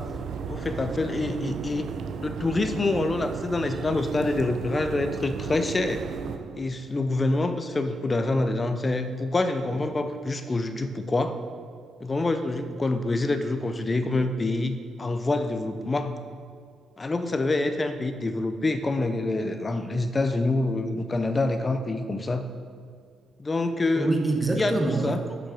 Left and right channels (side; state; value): both; normal; correlation 0.88